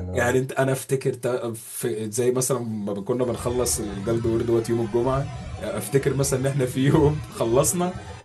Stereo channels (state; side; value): identical; both; correlation 1.00